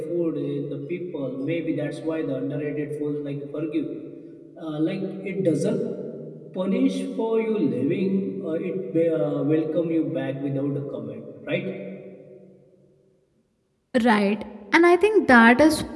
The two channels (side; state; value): both; identical; correlation 1.00